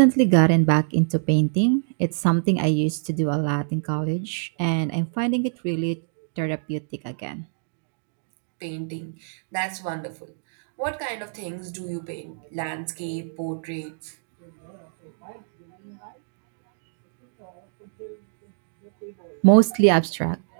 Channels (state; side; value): silent; left; digital silence